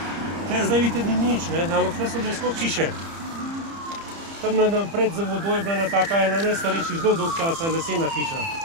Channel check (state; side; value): late; left; 30 ms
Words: Tle zdaj vidite, ni nič, ne? Ampak tle so bile skoro hiše. Tam pred za vodoj je bila ena najstarejših zelo dolg časa lesena hiša.